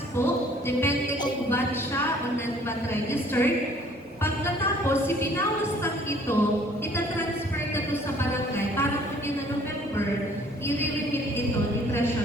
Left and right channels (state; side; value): normal; both; correlation 0.57